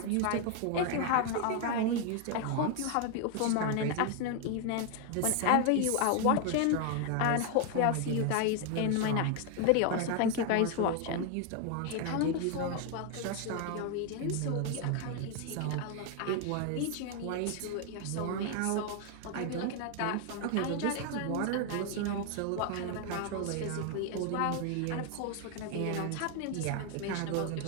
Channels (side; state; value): both; different; correlation 0.01